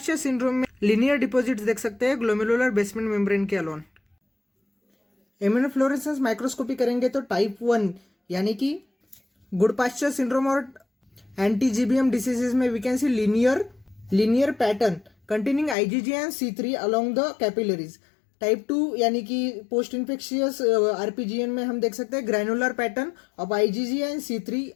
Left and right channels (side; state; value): right; drops out; at 15.8 s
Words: सिंड्रोम में लिनियर डिपॉजिट्स देख सकते हैं ग्लोमेरुलर बेसमेंट मेम्ब्रेन के अलोन. इम्यूनोफ्लोरेसेंस माइक्रोस्कोपी करेंगे तो टाइप 1 यानी कि गुड पास्चर सिंड्रोम और एंटी जीबीएम डिसीजेज में we can see linear pattern containing IgG and C3 along the capillaries. Type 2 यानी कि पोस्ट इन्फेक्शियस आरपीजीएन में हम देख सकते हैं granular pattern of IgG and C3